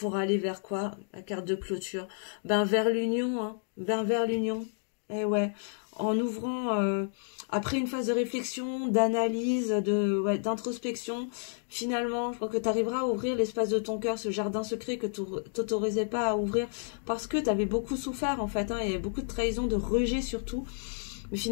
aller vers quoi? La carte de clôture. Ben vers l'union, hein. Ben vers l'union. Eh ouais, en ouvrant, après une phase de réflexion, d'analyse, d'introspection, finalement, je crois que tu arriveras à ouvrir l'espace de ton cœur, ce jardin secret que tu t'autorisais pas à ouvrir, parce que tu avais beaucoup souffert, en fait, hein, il y avait beaucoup de trahison, de rejet surtout. Mais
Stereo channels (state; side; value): silent; right; digital silence